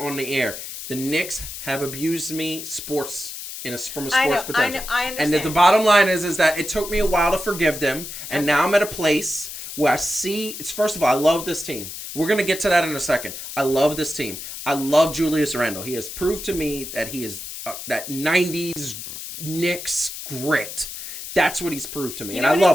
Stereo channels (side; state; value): left; noise; hiss, 9 dB below the sound